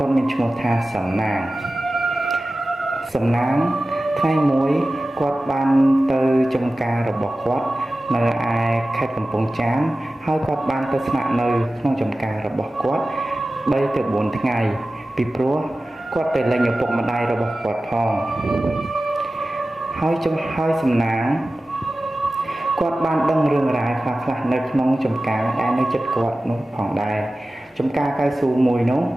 ាត់មានឈ្មោះថាសំណាងថ្ងៃមួយគាត់បានទៅចំការរបស់គាត់នៅឯខេត្តកំពង់ចាមហើយគាត់បានទៅស្នាក់នៅក្នុងចំការរបស់គាត់3ទៅ4ថ្ងៃពីព្រោះគាត់ទៅលេងឪពុកម្ដាយរបស់គាត់ផងហើយសំណាងគាត់បានដឹងរឿងរ៉ាវខ្លះៗនៅក្នុងចំការដែលនៅជិតគាត់នោះផងដែរចំការកៅស៊ូមួយនោះ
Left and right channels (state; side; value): normal; both; correlation 0.96